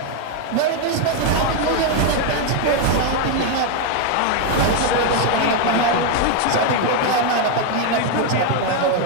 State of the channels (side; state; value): both; different; correlation 0.01